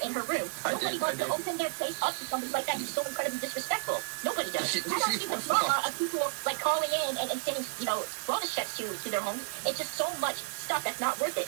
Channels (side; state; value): left; silent; digital silence